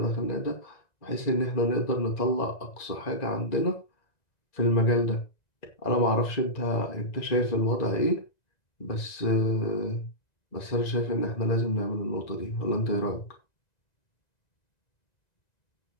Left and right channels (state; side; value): late; right; 1.9 ms